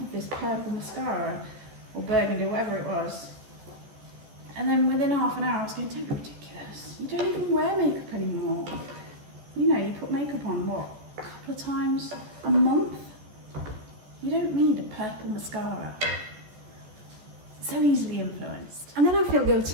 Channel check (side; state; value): left; late; 14 ms